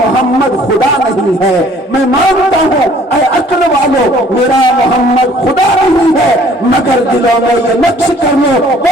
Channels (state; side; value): normal; both; correlation 0.56